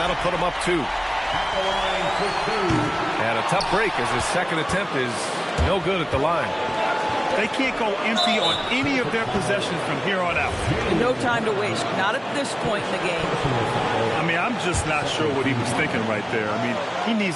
put him up 2. And a tough break as his second attempt is no good at the line. They can't go empty on any of their possessions from here on out. No time to waste. Not at this point in the game. I mean, I'm just not sure what he was thinking right there. I mean, he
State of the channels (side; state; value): both; identical; correlation 1.00